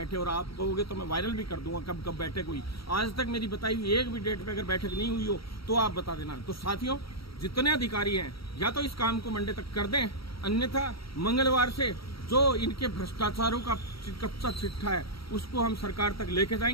और आप कहोगे तो मैं वायरल भी कर दूंगा कब कब बैठक हुई। आज तक मेरी बताई हुई एक भी डेट पे अगर बैठक नहीं हुई हो तो आप बता देना। तो साथियों, जितने अधिकारी हैं या तो इस काम को मंडे तक कर दें, अन्यथा मंगलवार से जो इनके भ्रष्टाचारों का कच्चा चिट्ठा है उसको हम सरकार तक लेके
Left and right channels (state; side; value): late; right; 0.75 ms